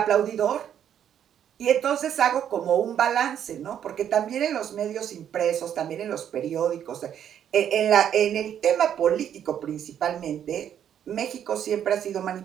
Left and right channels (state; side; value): quieter; left; 9.5 dB